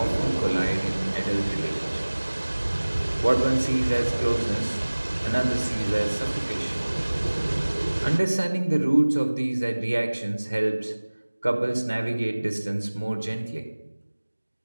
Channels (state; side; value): inverted; both; correlation -1.00